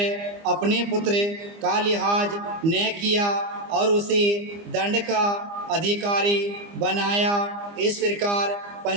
अपने पुत्र का लिहाज न किया और उसे दंड का अधिकारी बनाया। इस प्रकार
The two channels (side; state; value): left; late; 25 ms